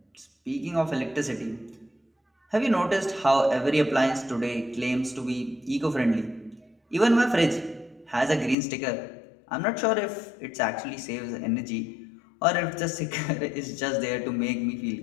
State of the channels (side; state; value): right; drops out; at 8.6 s